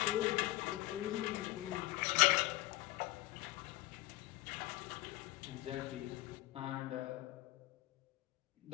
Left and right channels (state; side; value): quieter; right; 18.7 dB